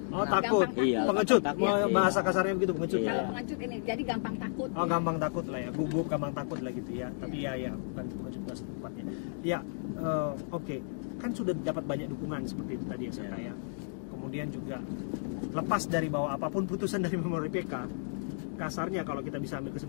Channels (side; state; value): right; silent; digital silence